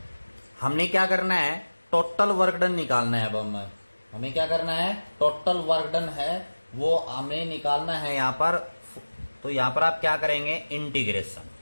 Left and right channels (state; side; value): inverted; both; correlation -1.00